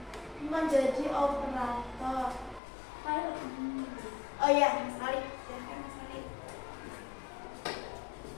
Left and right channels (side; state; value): right; drops out; at 2.6 s